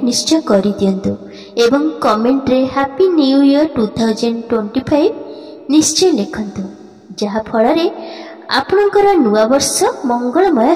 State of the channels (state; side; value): identical; both; correlation 1.00